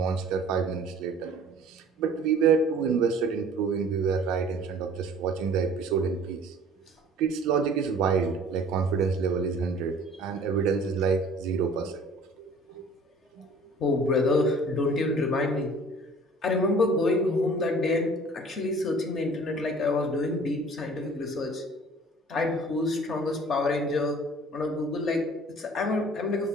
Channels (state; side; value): normal; both; correlation 0.49